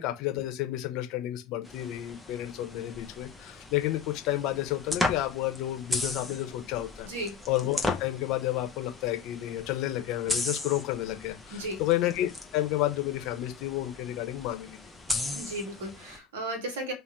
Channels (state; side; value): quieter; right; 8.2 dB